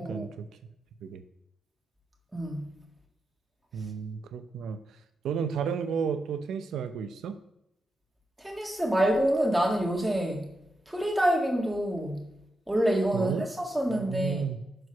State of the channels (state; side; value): normal; both; correlation 0.86